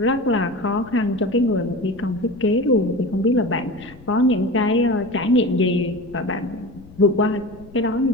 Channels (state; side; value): noise; left; rumble, 21 dB below the sound